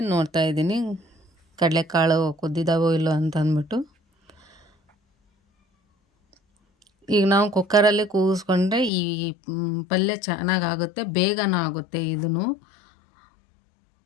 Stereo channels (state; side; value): drops out; right; at 8.9 s